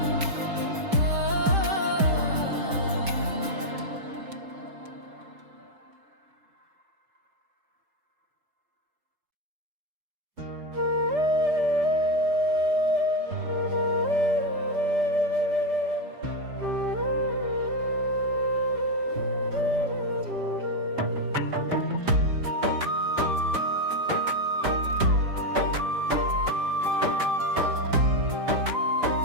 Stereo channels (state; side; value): late; left; 5.0 ms